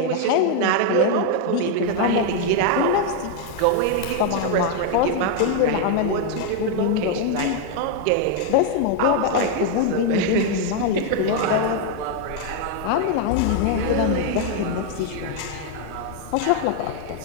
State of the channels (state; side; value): different; both; correlation 0.01